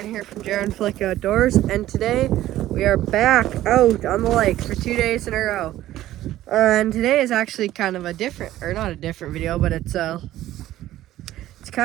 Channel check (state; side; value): quieter; left; 14.2 dB